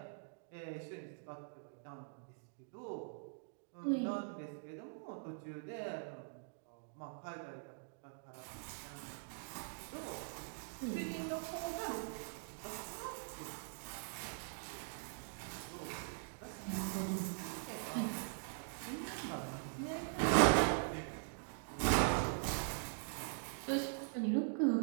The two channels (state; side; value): silent; left; digital silence